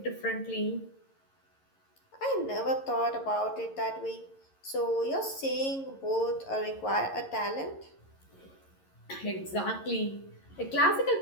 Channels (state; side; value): late; right; 11 ms